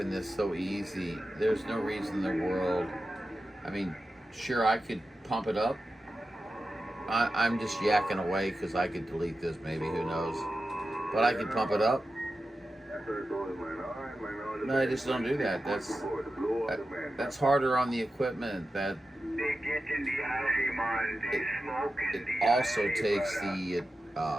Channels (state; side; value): normal; both; correlation 0.92